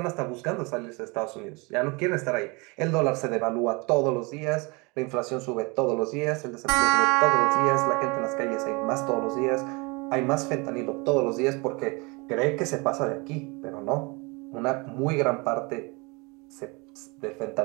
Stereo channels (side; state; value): left; quieter; 27.9 dB